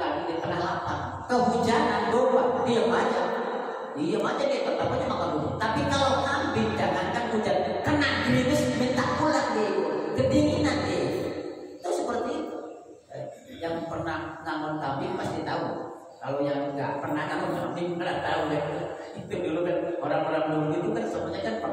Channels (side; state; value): both; identical; correlation 1.00